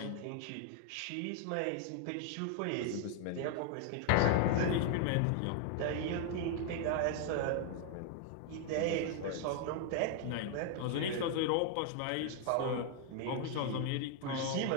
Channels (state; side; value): different; both; correlation 0.00